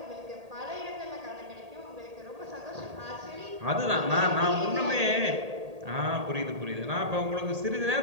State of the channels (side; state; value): left; late; 1.8 ms